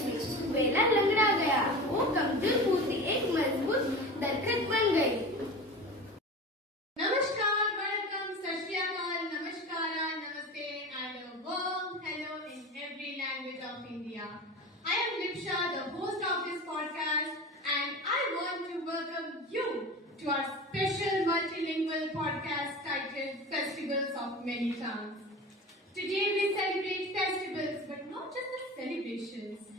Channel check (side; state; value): both; normal; correlation 0.32